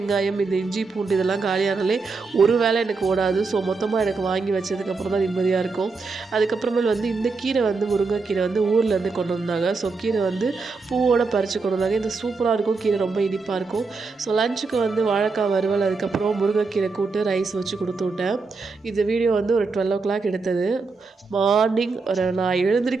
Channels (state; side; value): quieter; left; 4.2 dB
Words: இந்த இஞ்சி, பூண்டு இதெல்லாம் காலியானாலே ஒரு வேளை எனக்கு ஓடாது. ஸோ மொத்தமாக எனக்கு வாங்கி வச்சதுக்கப்புறம் தான் நிம்மதியாக இருக்கும். அதுக்கப்புறமேல் வந்து இந்த கீரை வந்து முருங்கைக்கீரை வந்து ஊர்லேருந்து கொண்டு வந்தாங்க. ஸோ கீரை வந்து பூவோட பறித்து கொண்டு வந்தாங்க. இது சூப்பராக இருக்கும். கீரை ரொம்ப இனிப்பாக இருக்கும். ஸோ லஞ்சுக்கு வந்து வாழைக்காய் வறுவல், அதுக்கப்புறம் முருங்கைக்கீரை கூட்டு, ரைஸ் வச்சு கொடுத்து விட்டேன். இந்த வீடியோ வந்து ஒரு 12:00 எடுத்தது. மார்னிங் நான்